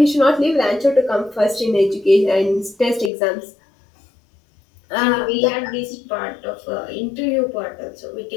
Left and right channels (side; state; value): right; drops out; at 3.1 s